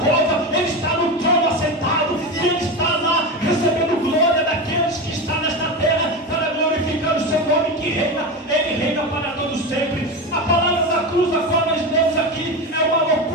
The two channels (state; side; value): normal; both; correlation 0.20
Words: Ele está no trono assentado, e ele está lá recebendo glória daqueles que estão nesta terra, para glorificar o seu nome que reina. Ele reina para todos sempre. A palavra da cruz da qual nós lemos aqui é uma